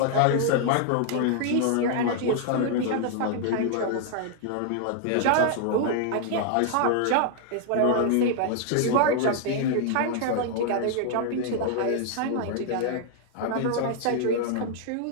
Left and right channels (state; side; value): different; both; correlation 0.00